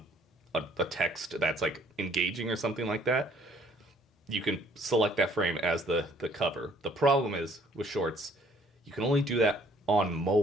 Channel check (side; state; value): both; normal; correlation 0.60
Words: a text that's like engaging or something like that, you can select that frame as the cover. The problem is with shorts, you can only do that on